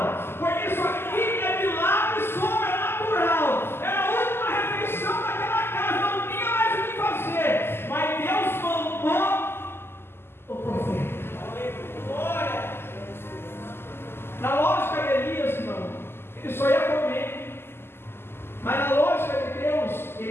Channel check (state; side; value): late; right; 0.12 ms